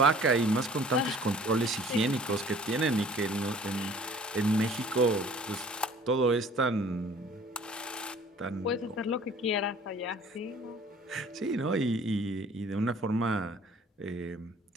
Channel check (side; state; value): both; normal; correlation 0.51